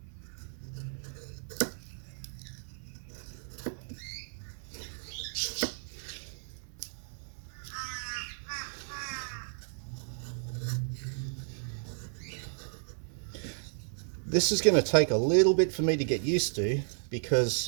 This is going to take a little bit for me to get used to,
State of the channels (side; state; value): left; silent; 55 dB below the other